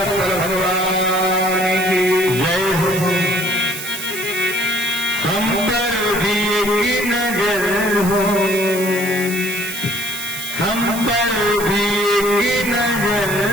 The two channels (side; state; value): right; noise; hiss, 8 dB below the sound